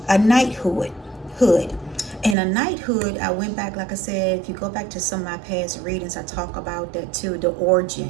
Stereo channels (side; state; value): left; drops out; at 2.4 s